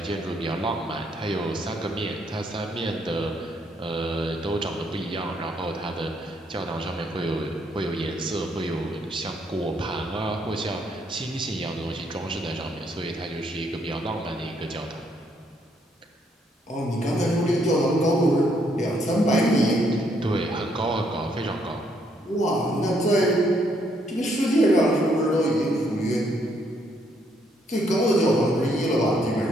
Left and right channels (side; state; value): both; normal; correlation 0.71